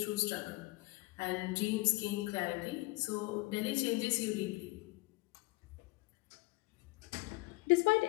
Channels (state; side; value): quieter; right; 23.4 dB